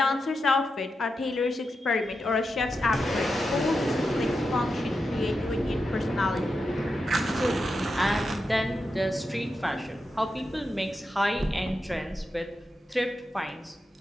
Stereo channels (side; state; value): both; normal; correlation 0.88